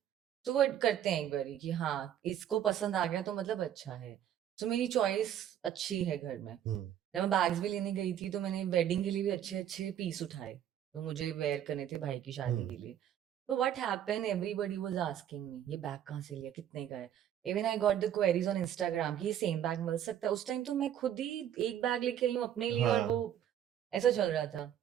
तो वो करते हैं एक बारी कि हाँ इसको पसंद आ गया तो मतलब अच्छा है। तो मेरी चॉइस अच्छी है घर में। जब मैं बैग्स भी लेने गई थी तो मैंने वेडिंग के लिए भी अच्छे अच्छे पीस उठाए, तो मुझे वेयर करने थे भाई की शादी के लिए। तो what happened, everybody was asking me ये बैग कहाँ से लिया, कितने का है। Even I got the queries on Instagram कि ये सेम बैग मिल सकता है। उस टाइम तो मैं खुद ही एक बैग लेके आई हूँ अपने लिए, और वो हाँ। ऐसा चल रहा था।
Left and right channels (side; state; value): left; quieter; 10.4 dB